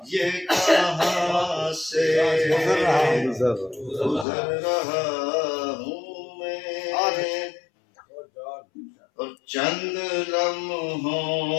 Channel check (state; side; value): drops out; right; at 4.2 s